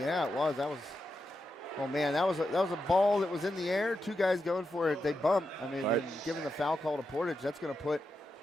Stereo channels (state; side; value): normal; both; correlation 0.87